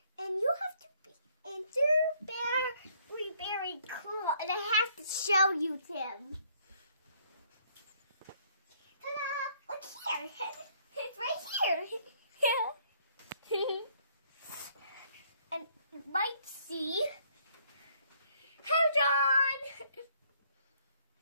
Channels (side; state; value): both; inverted; correlation -0.66